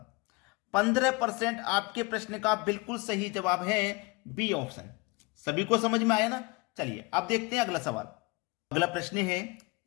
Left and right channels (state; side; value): quieter; right; 25.7 dB